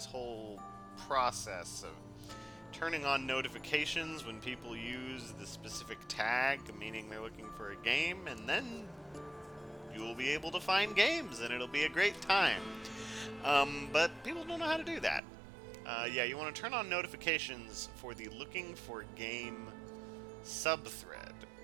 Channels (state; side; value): drops out; left; at 15.2 s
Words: whole process of turning on notifications when people use the specific tag, meaning they're looking for a game, and then you'll be able to find games, and it'll be a great time. But people don't know how to do that. Yeah, you want to turn on notifications for the looking for game subthread